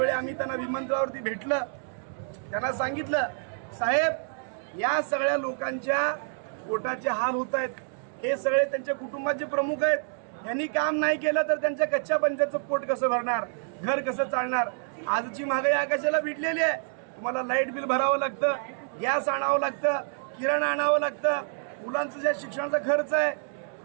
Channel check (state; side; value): silent; left; 59 dB below the other